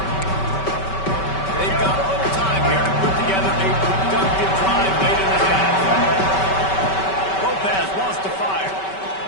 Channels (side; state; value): right; late; 5.2 ms